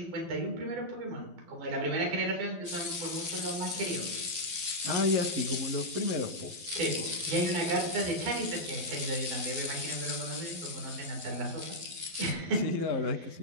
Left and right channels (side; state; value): left; late; 12 ms